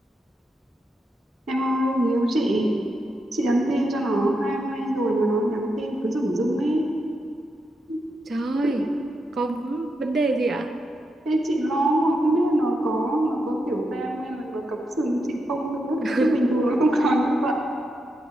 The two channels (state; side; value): normal; both; correlation 0.84